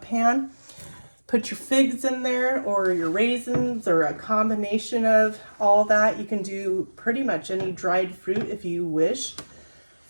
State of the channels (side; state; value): both; inverted; correlation -1.00